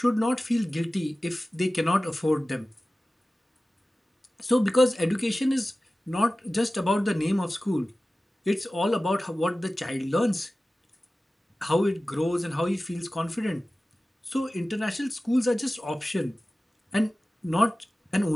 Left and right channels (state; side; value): normal; both; correlation 0.96